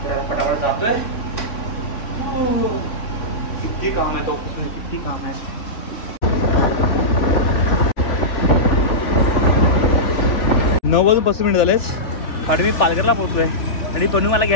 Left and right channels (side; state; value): right; late; 3.4 ms